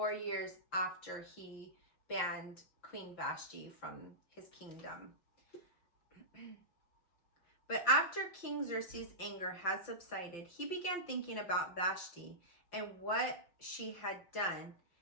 years after he banned Queen Vashti from his kingdom. But after King Xerxes' anger had subsided, he began thinking about Vashti and what she had done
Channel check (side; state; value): right; late; 5.8 ms